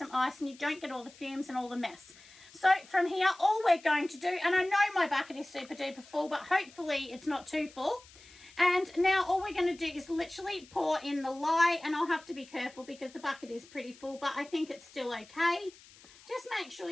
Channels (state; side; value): noise; left; hiss, 23 dB below the sound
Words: ice and you don't get all the fumes and all the mess. So from here, all we're going to do, and I know my bucket is super duper full, but hopefully it's not too full. And now all we're going to do is literally pour in the lye, and I'll have to be careful because the bucket is pretty full, but I think it's still okay. Just make sure